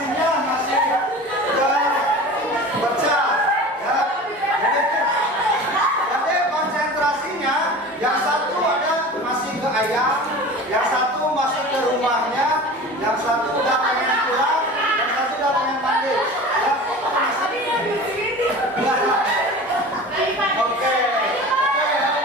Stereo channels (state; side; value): normal; both; correlation 0.36